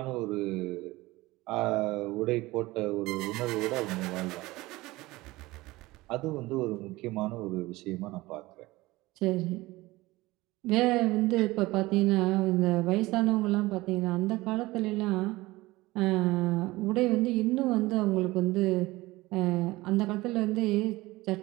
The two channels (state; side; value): quieter; left; 19.8 dB